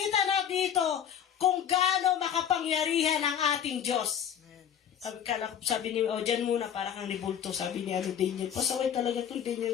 na dito kung gaano makapangyarihan ang ating Diyos. Sabi ni, dyan muna, para kang nibulto, sabi ni Daniel. Pasaway talaga itong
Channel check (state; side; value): quieter; right; 9.1 dB